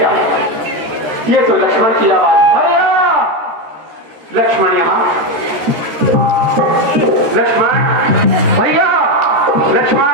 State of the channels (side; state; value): left; late; 13 ms